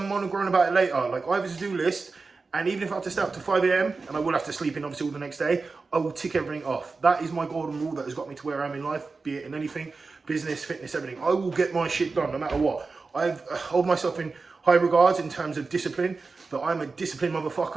moan and groan about it later. Like, I have a to-do list. And even if I have to stay up to 5 AM, and I will have to sleep in obviously all the next day, I will tick everything off. That is my golden rule that has got me to where I am in life, be it in anything, business, fitness, everything. I will get my shit done no matter what. I hold myself in high regards in terms of discipline, but I'm a disciplined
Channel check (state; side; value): quieter; left; 4.2 dB